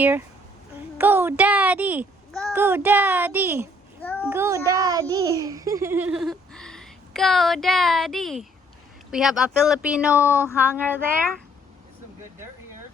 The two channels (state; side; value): normal; both; correlation 0.63